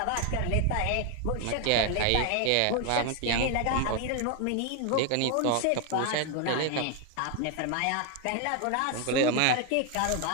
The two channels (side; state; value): both; different; correlation 0.00